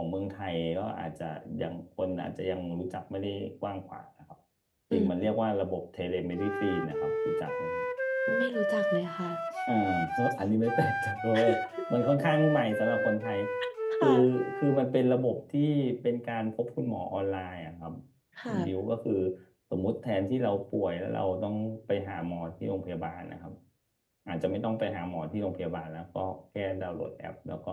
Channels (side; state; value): both; identical; correlation 1.00